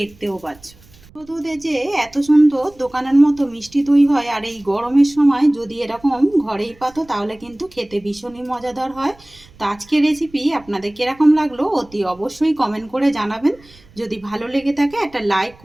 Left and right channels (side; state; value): right; noise; rumble, 26 dB below the sound